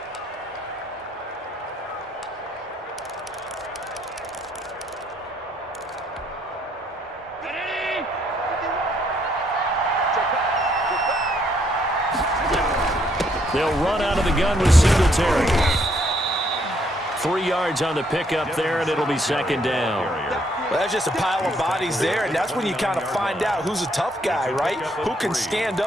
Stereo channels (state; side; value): normal; both; correlation 0.70